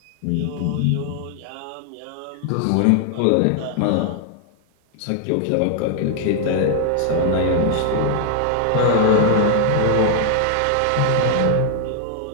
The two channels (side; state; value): both; different; correlation 0.00